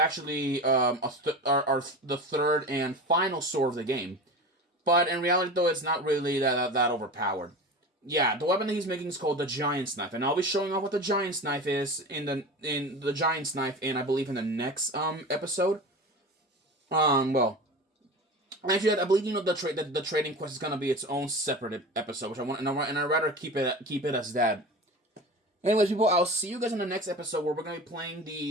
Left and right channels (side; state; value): both; normal; correlation 0.31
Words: the third and final sword of the game. But in reality, though, it's not really that overpowered. Yeah, the weapon that he's making is called the Giant's Knife, and I'll be showing off what the Giant's Knife is in the Giant's Knife, and I believe in the next episode. Well, actually, I believe the trading quest is gonna be its own separate episode, which I want, and I'd rather keep it as that. Anyways, people, I'll see you guys in the next episode where we're gonna be playing